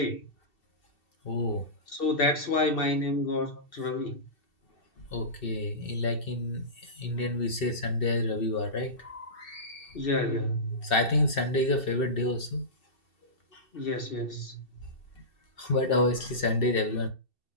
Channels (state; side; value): late; right; 2.7 ms